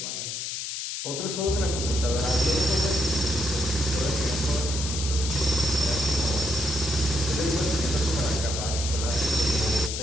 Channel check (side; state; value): left; noise; hiss, 4 dB below the sound